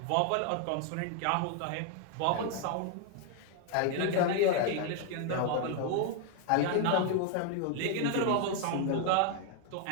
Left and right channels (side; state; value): both; different; correlation 0.00